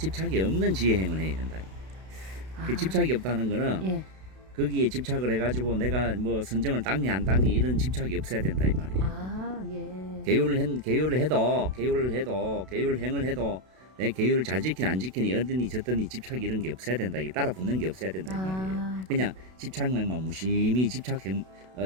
없는 지혜행을 해야 된다. 아, 그 집착이 없다는 거는 예, 거기에 집착을 해가지고 내가 뭐 선정을 닦니 안 닦니 이런 집착이 없어야 된다 이 말이에요. 아, 예, 계율을 해도 계율행을 해도 내 계율을 잘 지키니 안 지키니 어디니 저더니 집착 이런 게 없어야 된다. 이게 따라 붙는 게 없어야 된다 이 말이에요. 아, 그냥 집착행만 무심히 집착행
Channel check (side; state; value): left; late; 32 ms